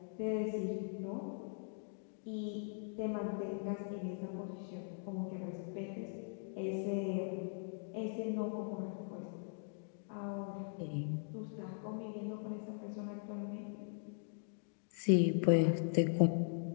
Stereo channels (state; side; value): silent; right; digital silence